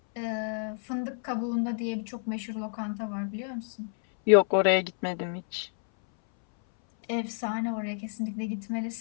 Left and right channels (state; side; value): silent; right; 58 dB below the other